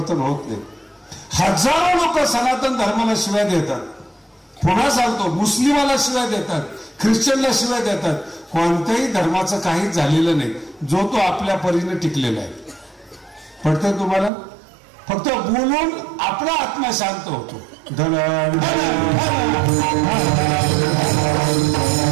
होत नाही. हजारो लोक सनातन धर्माला शिव्या देतात. पुन्हा सांगतो, मुस्लिमाला शिव्या देतात, ख्रिश्चनला शिव्या देतात. कोणत्याही धर्माचं काहीच झालेलं नाही, जो तो आपल्या परीने टिकलेला आहे. पडतंय तुम्हाला? फक्त बोलून आपला आत्मा शांत होतो.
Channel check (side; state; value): left; drops out; at 14.3 s